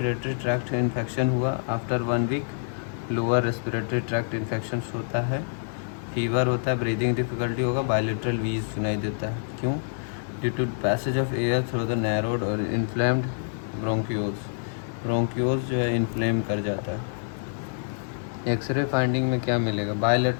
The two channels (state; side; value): silent; right; digital silence